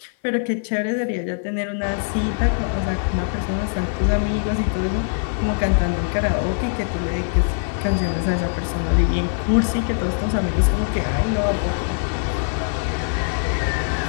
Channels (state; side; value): silent; right; 57 dB below the other